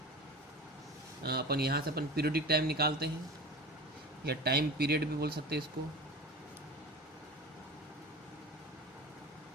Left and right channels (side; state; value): both; normal; correlation 0.34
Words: अपन यहाँ से अपन पीरियोडिक टाइम निकालते हैं, या टाइम पीरियड भी बोल सकते हैं इसको।